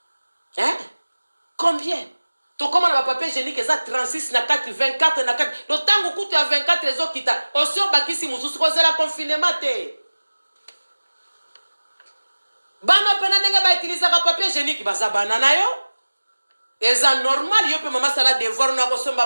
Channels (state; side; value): inverted; both; correlation -1.00